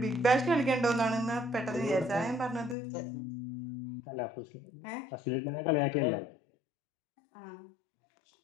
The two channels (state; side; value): drops out; right; at 2.8 s